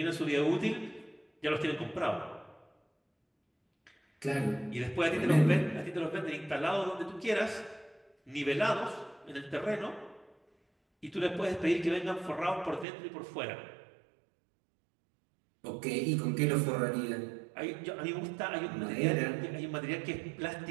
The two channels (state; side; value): drops out; left; at 12.9 s